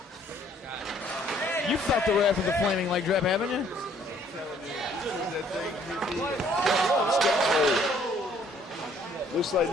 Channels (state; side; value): normal; both; correlation 0.61